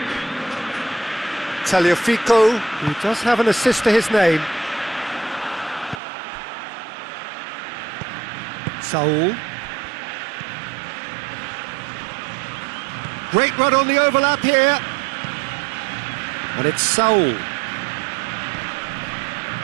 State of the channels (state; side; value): drops out; left; at 6.0 s